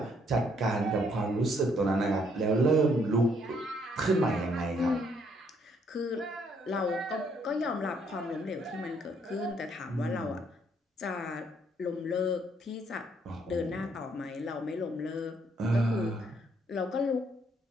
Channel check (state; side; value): normal; both; correlation 0.69